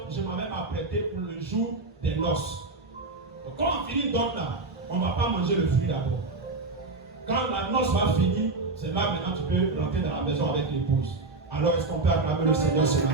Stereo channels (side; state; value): left; quieter; 3.4 dB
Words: je m'en vais m'apprêter pour le jour des noces. Donc, quand on finit dot là, on ne va pas manger le fruit d'abord. Quand la noce va finir, c'est là maintenant tu peux rentrer dans la maison avec l'épouse. Alors est-ce qu'on peut acclamer le Seigneur ce